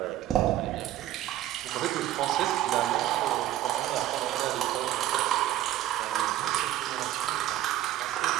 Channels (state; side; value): quieter; left; 13.4 dB